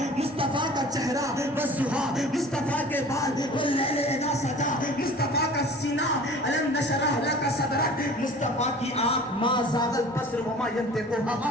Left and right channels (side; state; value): both; normal; correlation 0.44